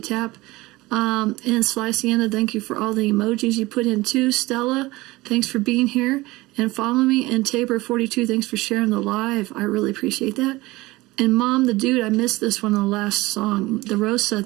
And Sly Sienna, thank you for all the emojis you put in too. Stella, thanks for being here and follow me. And Tabor42, thanks for sharing the live. I really appreciate that. And Mom the Dude, I missed this one on the last song. The Rosa,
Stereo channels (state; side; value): quieter; left; 20.3 dB